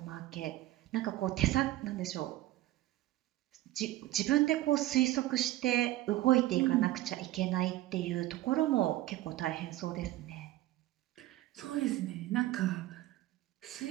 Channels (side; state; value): left; quieter; 15.9 dB